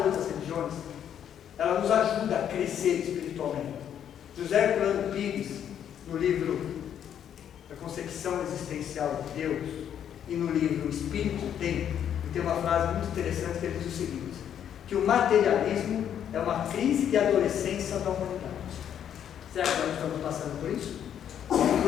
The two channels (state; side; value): quieter; right; 9.4 dB